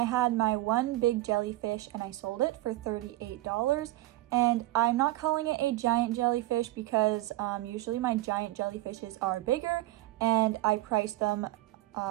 had my 1 big jellyfish and I sold it for $38. And I'm not calling it a giant jellyfish because usually my giant jellyfishes are bigger, and I priced them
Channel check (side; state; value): left; quieter; 17.4 dB